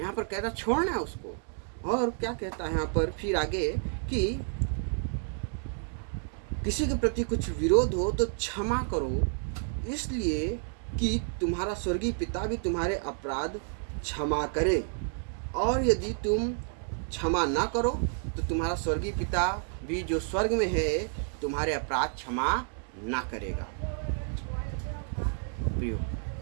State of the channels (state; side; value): silent; left; 58 dB below the other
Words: पर कहता छोड़ना है उसको। और क्या कहता है यहाँ पर फिर आगे कि किसी के प्रति कुछ विरोध हो तो क्षमा करो, इसलिए कि तुम्हारा स्वर्गीय पिता भी तुम्हारे अपराध क्षमा करे। और यदि तुम क्षमा ना करो तो तुम्हारा स्वर्गीय पिता भी जो स्वर्ग में है तुम्हारे अपराध क्षमा ना करेगा। प्रियो,